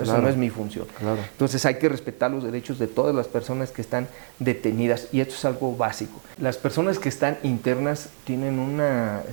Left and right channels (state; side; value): silent; left; digital silence